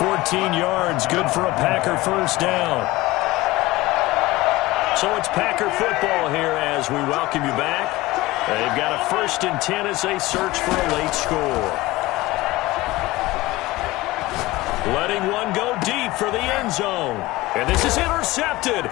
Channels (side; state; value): right; quieter; 19.1 dB